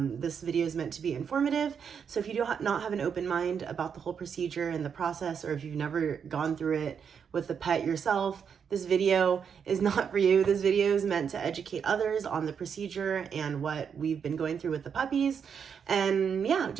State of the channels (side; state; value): left; quieter; 7.1 dB